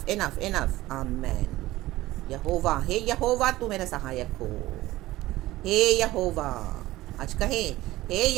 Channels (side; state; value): left; quieter; 17.2 dB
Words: enough, enough, आमेन। यहोवा, हे यहोवा तू मेरा सहायक हो। हे यहोवा, आज कहे हे